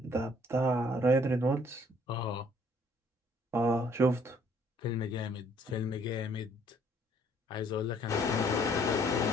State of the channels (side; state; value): both; normal; correlation 0.62